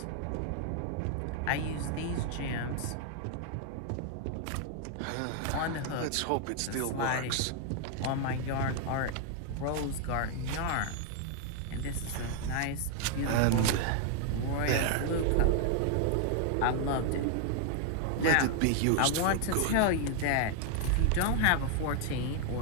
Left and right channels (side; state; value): both; different; correlation 0.00